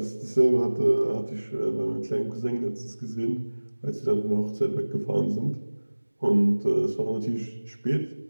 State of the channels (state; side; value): inverted; both; correlation -1.00